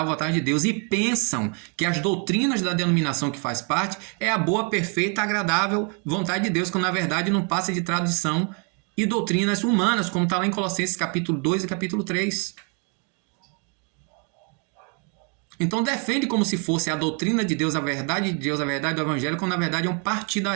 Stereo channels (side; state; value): left; quieter; 37.3 dB